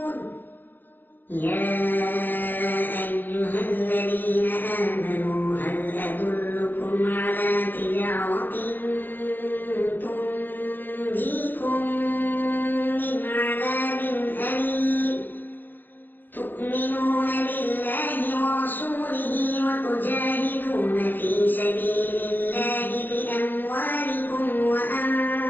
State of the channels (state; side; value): late; right; 0.090 ms